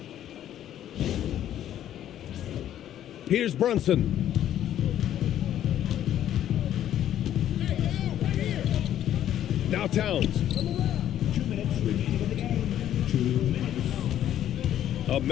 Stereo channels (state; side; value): quieter; right; 11.3 dB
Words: Here's Brunson. Now Towns. 2 minutes remaining in the game. 2 minutes. A